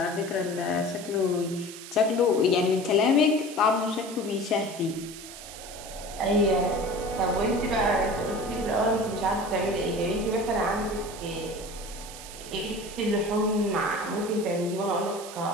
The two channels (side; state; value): right; noise; hiss, 13 dB below the sound